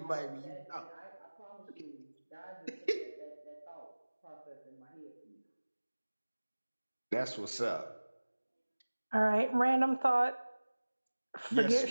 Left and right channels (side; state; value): both; inverted; correlation -1.00